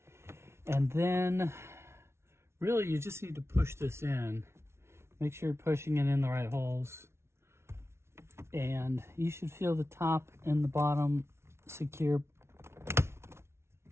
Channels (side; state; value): left; late; 0.13 ms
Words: And then, really, you just need to push this in. Make sure you're pushing it in the right holes. And you should feel the top and the bottom secure